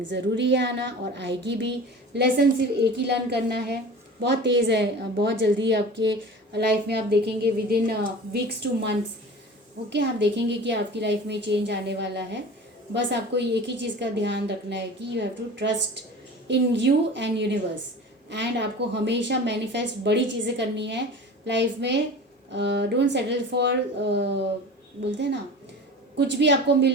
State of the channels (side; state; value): both; normal; correlation 0.37